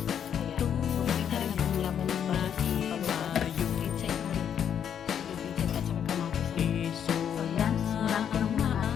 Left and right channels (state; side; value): quieter; right; 8.6 dB